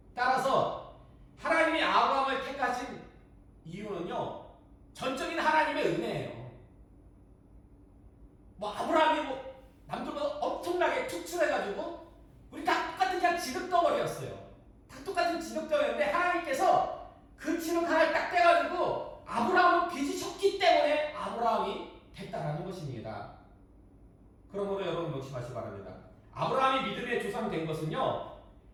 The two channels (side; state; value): both; identical; correlation 1.00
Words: 따라서 하나님이 아브라함을 택하신 이유는요. 전적인 하나님의 은혜예요. 아브라함이 남들보다 엄청나게 투출해가지고 우리 다 똑같은 그냥 진흙덩어리였어요. 다 똑같은 진흙덩어리였는데 하나님께서 그 진흙 하나를 딱 떼가지고 아브라함을 빚으셨기 때문에 아브라함이 됐다라는 것입니다. 그러므로 여러분 명심하시기 바랍니다. 아브라함이 믿음의 조상 된 것은요.